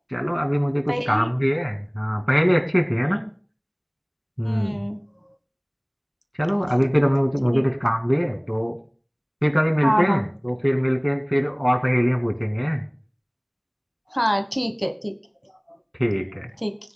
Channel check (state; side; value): identical; both; correlation 1.00